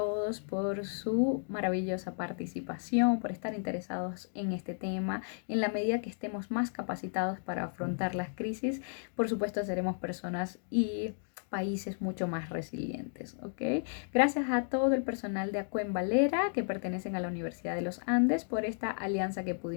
por su maravillosa participación, por estar interesados en este tema. En la medida que estemos más capacitados para afrontar las crisis, por supuesto seremos personas y países mucho más resilientes, ¿ok? Gracias a todo el personal de Acuen Valera que pertenecen a la Universidad de los Andes por esta alianza que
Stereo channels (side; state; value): right; silent; digital silence